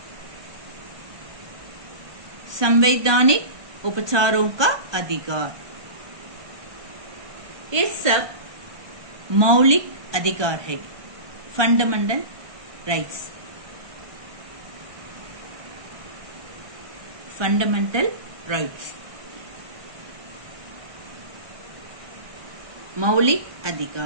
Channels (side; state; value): left; late; 1.2 ms